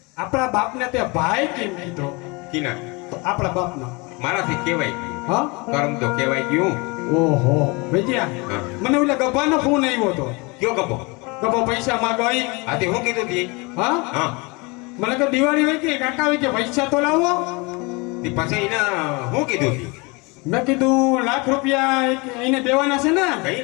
આપણા બાપને તે ભાઈ કેમ કીધો કીના તો આપણા બાપનો મારાથી કહેવાય ગયું હા કરમ તો કહેવાય ગયું. ઓહો ભૈયા હા. મને ઓલા ગભાનો ફોન આવ્યો હતો કયો ગપો ગભો પૈસા માંગવાઈ આથી હું કીધું તી હા હા મને કે દિવાળી હોય કે કાકા હોય કે પૈસા તો લાવો તે પછી એને હું કીધું તી મેં કીધું લાખ રૂપિયા એને દેવાના છે ને કઈ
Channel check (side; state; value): right; quieter; 27.7 dB